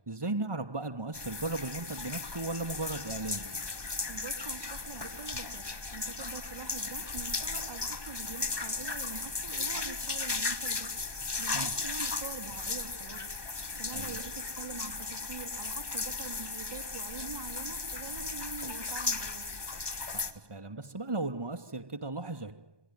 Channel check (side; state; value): left; late; 1.2 ms